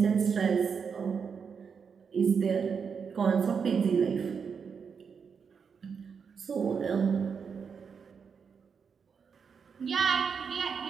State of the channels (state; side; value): quieter; left; 6.2 dB